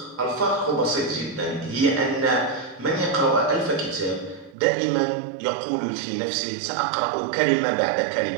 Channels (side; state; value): left; drops out; at 4.5 s